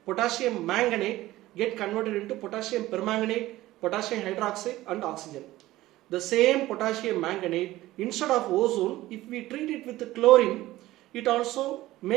potassium manganate get converted into potassium permanganate, potassium hydroxide and oxygen. The same potassium manganate, instead of ozone, if we treat it with chlorine, it also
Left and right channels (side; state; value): left; quieter; 16.6 dB